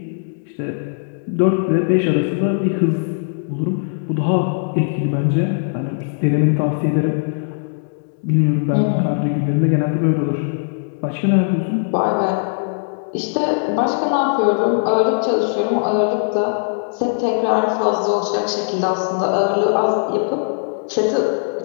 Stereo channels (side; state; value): right; silent; digital silence